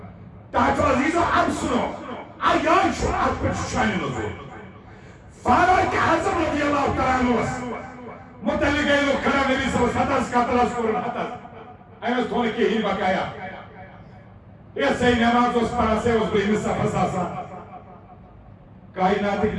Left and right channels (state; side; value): identical; both; correlation 1.00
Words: تاکہ عزیزو اب سنو آیان شو ات پر شانی نظور فاروق اعظم رضی اللہ تعالیٰ عنہ متعلق ہے لوگ کھڑا نبی صلی اللہ علیہ وسلم قاتل اسکورن حتت ایمس تھوڑی کی ہی بقایا یہ صحیح نماز اس پڑھا سے اس بہی مصطفیٰ فساسا کائنات ایک